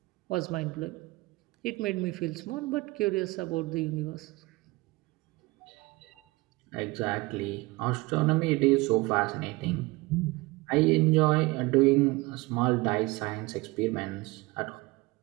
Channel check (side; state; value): left; quieter; 22.5 dB